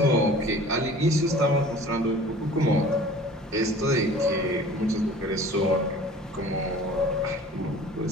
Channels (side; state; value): both; normal; correlation 0.45